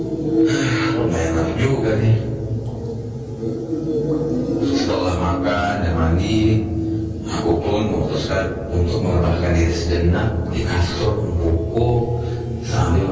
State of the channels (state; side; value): identical; both; correlation 1.00